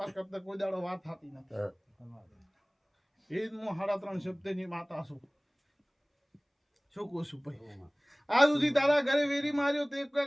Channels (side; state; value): both; identical; correlation 1.00